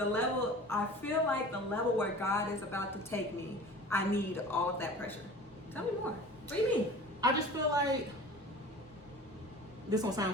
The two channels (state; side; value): normal; both; correlation 0.40